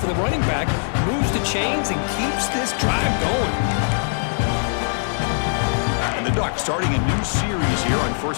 the running back, moves the chains, and keeps this drive going. And the Ducks starting a new series here on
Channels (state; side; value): silent; right; digital silence